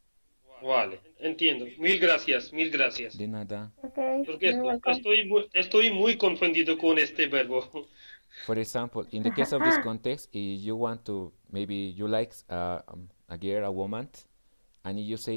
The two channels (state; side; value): inverted; both; correlation -1.00